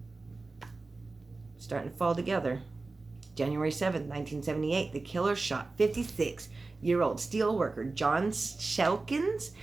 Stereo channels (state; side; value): quieter; left; 3.6 dB